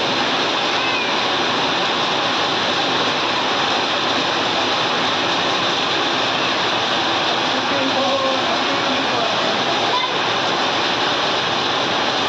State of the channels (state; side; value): identical; both; correlation 1.00